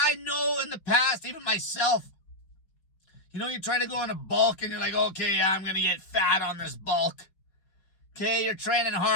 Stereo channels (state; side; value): late; right; 5.5 ms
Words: know in the past, even myself, you try to go in a bulk and you're like, okay, I'm going to get fat on this bulk. Okay, you're training